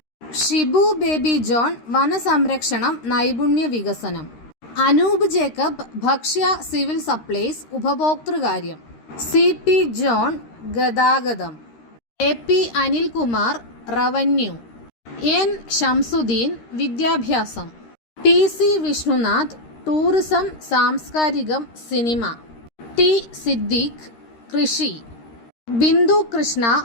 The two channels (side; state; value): right; late; 13 ms